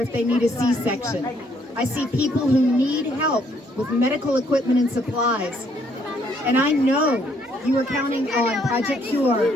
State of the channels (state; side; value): normal; both; correlation 0.68